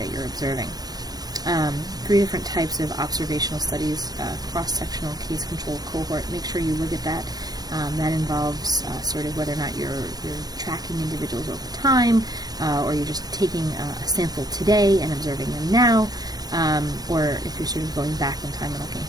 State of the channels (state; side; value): late; left; 0.19 ms